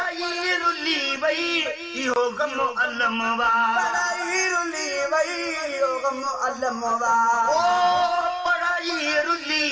रुली वई इहो गम अलम वा पढ़ाई रुली वई इहो गम अलम वा ओ पढ़ाई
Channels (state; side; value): identical; both; correlation 1.00